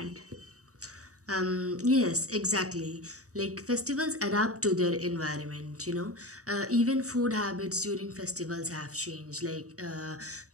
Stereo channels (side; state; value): left; late; 0.66 ms